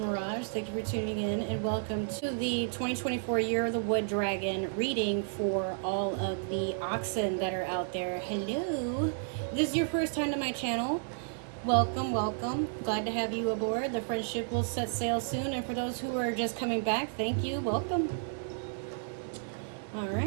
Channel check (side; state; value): left; silent; 56 dB below the other